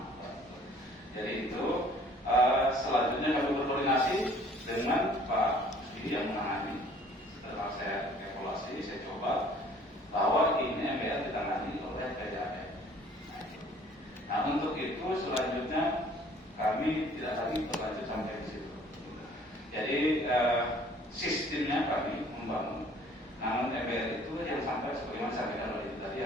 Jadi itu selanjutnya kami berkoordinasi dengan Pak Sudi yang menangani. Setelah saya evaluasi, saya coba bahwa ini MBR ditangani oleh itu selanjutnya kami tidak lagi berlanjut sampai di situ. Jadi sistemnya kami membangun, namun MBR itu yang sampai sebagaimana sampaikan oleh itu tadi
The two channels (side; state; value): both; normal; correlation 0.55